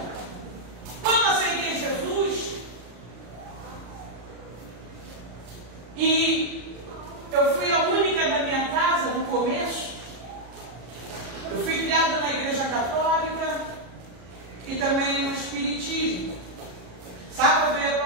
Quando aceitei Jesus, e eu fui a única da minha casa no começo. Eu fui criada na igreja católica e também no espiritismo. Sábado eu ia para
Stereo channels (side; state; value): left; late; 33 ms